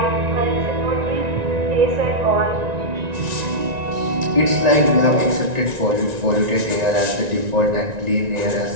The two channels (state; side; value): late; left; 1.9 ms